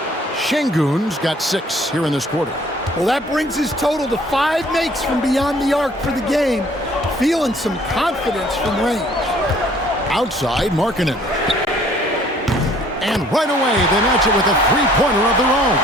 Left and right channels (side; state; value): both; normal; correlation 0.57